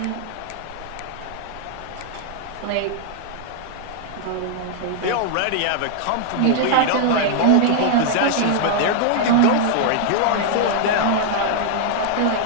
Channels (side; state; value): both; different; correlation -0.01